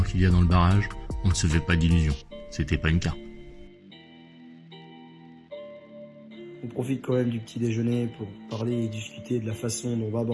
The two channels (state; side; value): identical; both; correlation 1.00